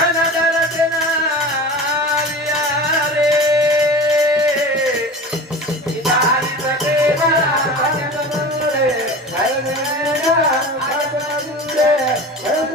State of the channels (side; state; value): both; normal; correlation 0.34